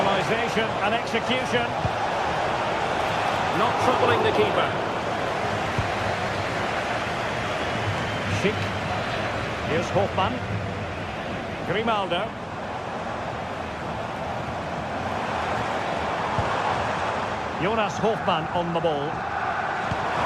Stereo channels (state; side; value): identical; both; correlation 1.00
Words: and execution. Not troubling the keeper. Schick. Here's Hofmann. Grimaldo. Jonas Hofmann on the ball.